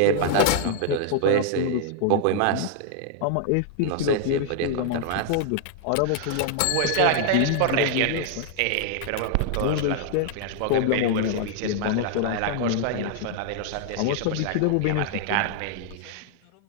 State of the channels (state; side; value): different; both; correlation -0.01